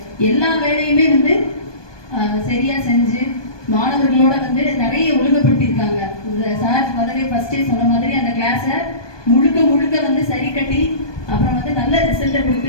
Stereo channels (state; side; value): late; right; 1.2 ms